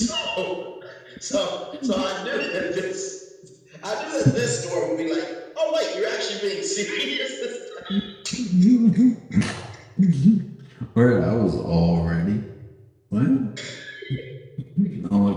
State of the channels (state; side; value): identical; both; correlation 1.00